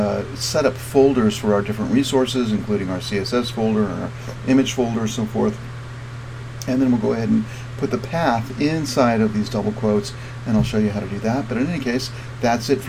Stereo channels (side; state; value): both; identical; correlation 1.00